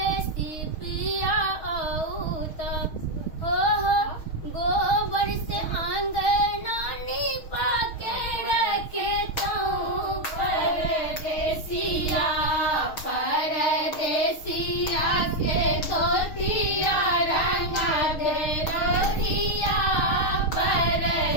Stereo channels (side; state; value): right; late; 6.4 ms